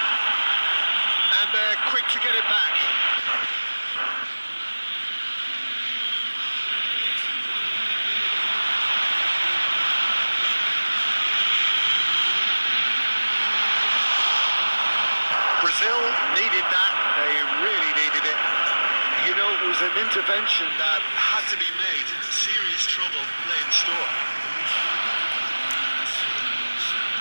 And they're quick to get it back. Brazil needed that. They really needed it. You know, it was an intervention that had to be made. Serious trouble lay in store.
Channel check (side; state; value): both; inverted; correlation -1.00